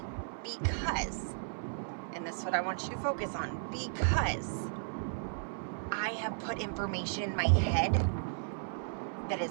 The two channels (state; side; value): silent; left; 55 dB below the other